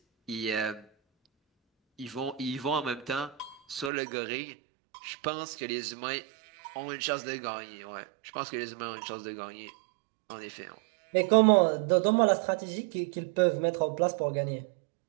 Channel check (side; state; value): left; drops out; at 3.9 s